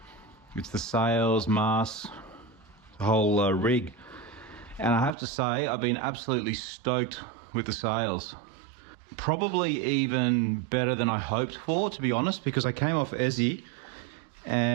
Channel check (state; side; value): drops out; left; at 5.1 s